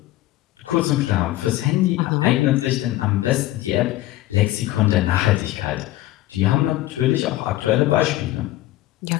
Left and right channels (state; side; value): quieter; right; 15.9 dB